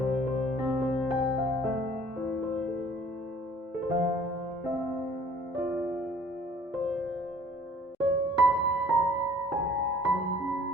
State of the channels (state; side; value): normal; both; correlation 0.53